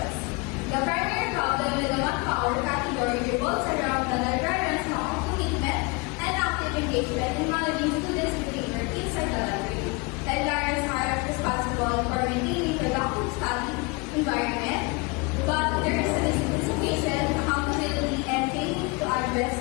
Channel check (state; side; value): quieter; right; 27.6 dB